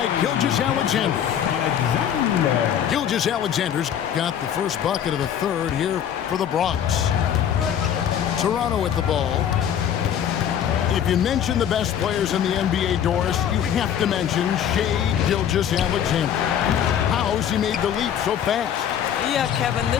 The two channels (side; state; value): right; quieter; 9.4 dB